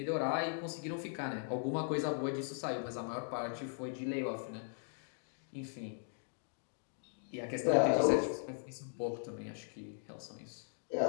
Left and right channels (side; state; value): right; silent; digital silence